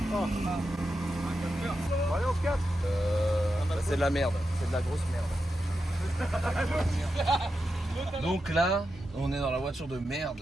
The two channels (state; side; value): normal; both; correlation 0.88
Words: Allez, on se casse. C'est de la merde, c'est de la grosse merde. Donc là, on est dans la voiture de